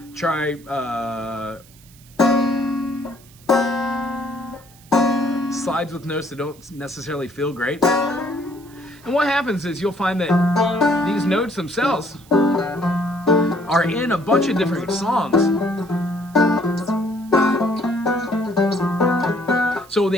try slides with notes that don't necessarily feel great. And what happens is you'll find that these notes themselves are in a bunch of different songs. So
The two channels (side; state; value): right; noise; hiss, 25 dB below the sound